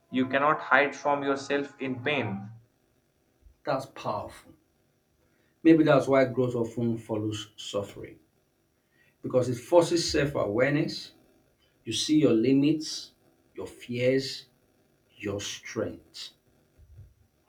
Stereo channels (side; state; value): both; identical; correlation 1.00